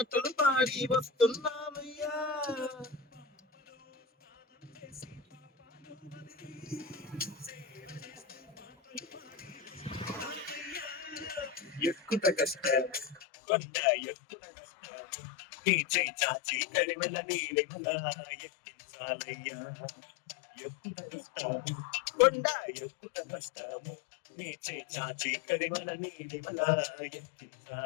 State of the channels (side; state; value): right; drops out; at 13.2 s